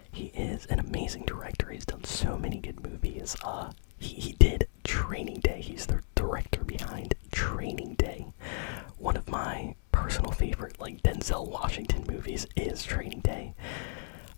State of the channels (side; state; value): right; silent; digital silence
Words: He is an amazing director. He's done so many good movies. He did Training Day. He's the director behind Training Day. One of my personal favorite, like, Denzel Washington movies is Training Day.